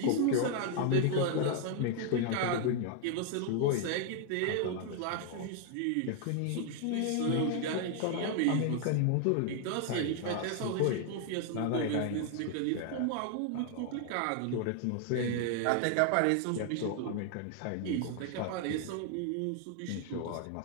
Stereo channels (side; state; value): both; different; correlation 0.00